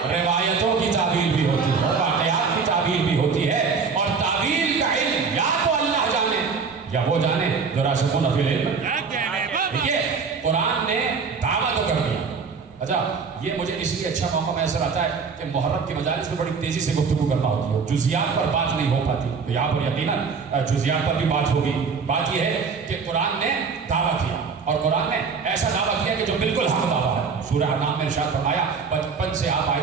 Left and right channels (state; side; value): quieter; left; 5.3 dB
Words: روایتوں کی تعویل بھی ہوتی ہے, واقعات کی تعویل بھی ہوتی ہے. اور تعویل کا علم یا تو اللہ جانے یا وہ جانے جو راسخون فی العلم. دیکھیے قرآن نے دعویٰ تو کر دیا. اچھا یہ مجھے اس لیے اچھا موقع میسر آتا ہے کہ محرم کی مجالس میں بڑی تیزی سے گفتگو کرنا ہوتی ہے, جزیات پر بات نہیں ہو پاتی. تو یہاں پر یقیناً جزیات پر بھی بات ہوگی. بات یہ ہے کہ قرآن نے دعویٰ کیا, اور قرآن نے ایسا دعویٰ کیا کہ جو بالکل حق دعویٰ ہے. سورہ انعام میں ارشاد فرمایا, بچپن سے آپ